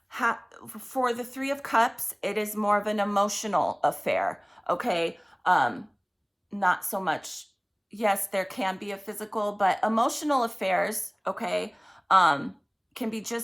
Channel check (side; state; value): both; identical; correlation 1.00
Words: for the Three of Cups, it is more of an emotional affair, okay? Not so much, yes, there can be a physical, but emotional affairs, okay, can be